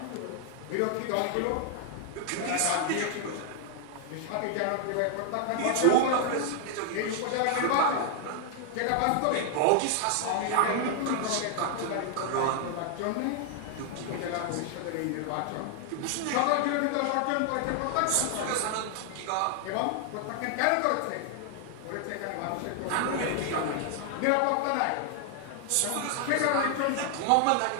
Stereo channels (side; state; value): both; different; correlation 0.00